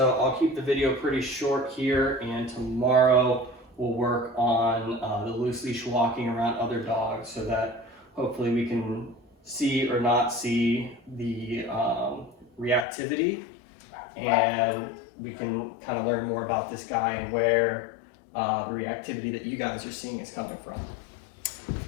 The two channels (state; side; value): drops out; right; at 12.9 s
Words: I'll keep the video pretty short here, and tomorrow we'll work on the loose leash walking around other dogs, so that hopefully we can see or not see the reactivity, and we can kind of learn more about this guy and where the reactivity that you guys are seeing is coming from.